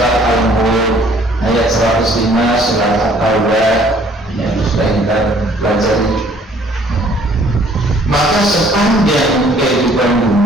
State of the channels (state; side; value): normal; both; correlation 0.59